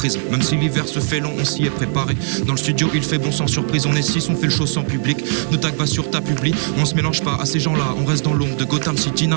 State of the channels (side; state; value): left; silent; digital silence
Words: Même si l'hiver se fait long, on s'y est préparé. Dans le studio, il fait bon sans surprise, on est 6, on fait le show sans public. Nos tags va sur ta publi, on se mélange pas à ces gens-là, on reste dans l'ombre de Gotham City.